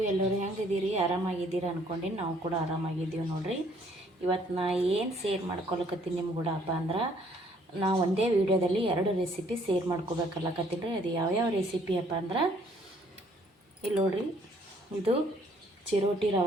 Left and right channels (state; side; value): normal; both; correlation 0.63